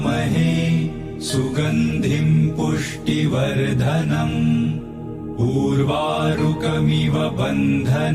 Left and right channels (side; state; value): both; identical; correlation 1.00